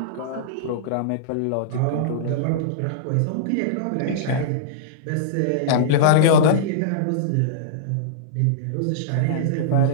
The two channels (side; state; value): both; different; correlation -0.03